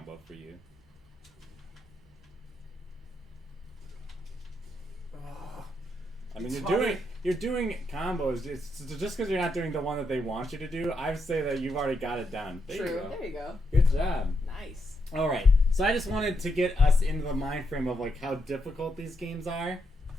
for you. I mean, you're doing combos. It's just because you're not doing the one that they want you to do. I would say that you've already got it done. There True. You go. There you go. Good job. Nice. All right. So I just wanted to get us into the mind frame of like how difficult these games are,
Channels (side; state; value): both; normal; correlation 0.81